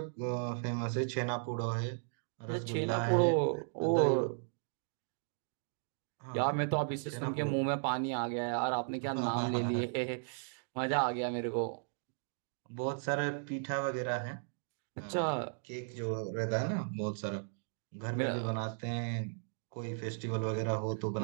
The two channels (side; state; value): left; silent; digital silence